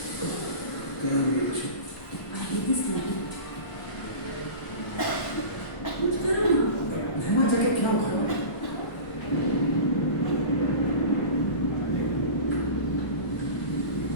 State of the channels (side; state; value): right; late; 1.1 ms